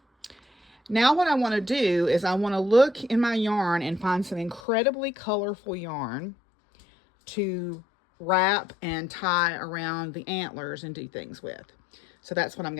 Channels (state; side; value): drops out; right; at 4.6 s